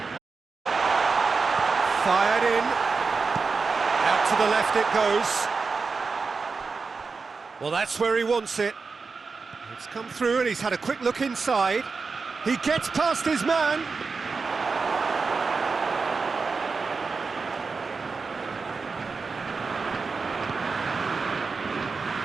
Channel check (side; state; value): left; quieter; 4.6 dB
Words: Fired in. Out to the left it goes. Well, that's where he wants it. It's come through and he's had a quick look inside. He gets past his man.